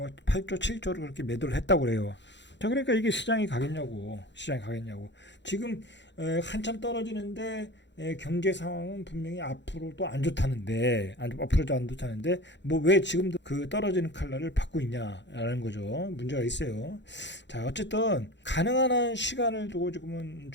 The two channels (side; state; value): right; late; 0.52 ms